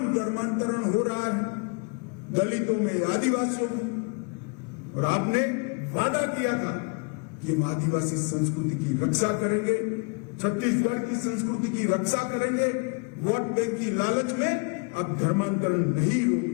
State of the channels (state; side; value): quieter; right; 34.1 dB